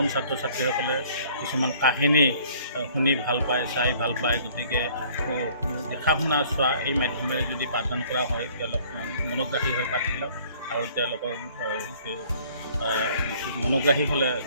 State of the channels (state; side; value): inverted; both; correlation -0.56